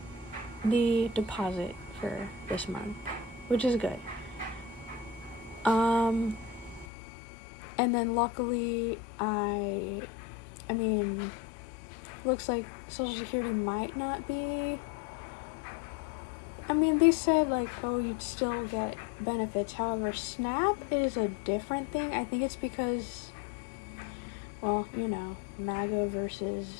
the deposit for this month, which is good. And then luckily looks like Social Security might not be, they said like, oh, you'd still get benefits. However, SNAP is a different thing. I think it's because, well, MAGA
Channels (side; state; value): right; drops out; at 6.9 s